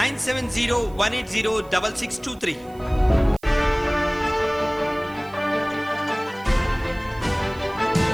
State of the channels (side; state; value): right; noise; hiss, 27 dB below the sound